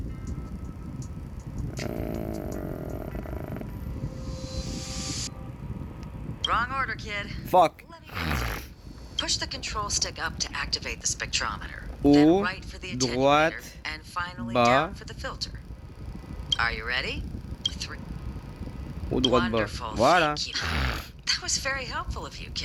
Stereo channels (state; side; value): identical; both; correlation 1.00